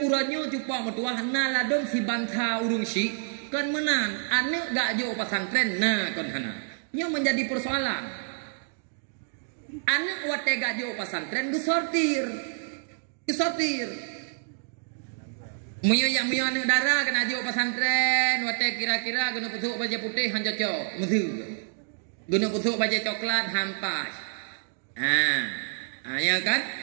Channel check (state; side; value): silent; left; digital silence